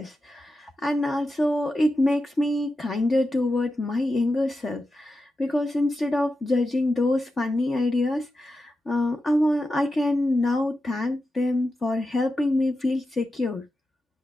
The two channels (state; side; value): normal; both; correlation 0.90